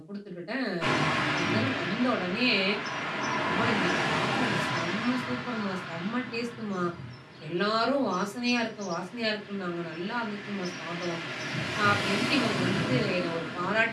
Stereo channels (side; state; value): both; identical; correlation 1.00